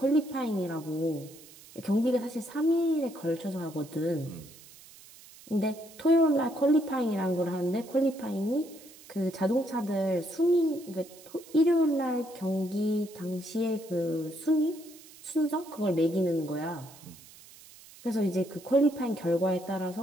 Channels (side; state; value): right; noise; hiss, 21 dB below the sound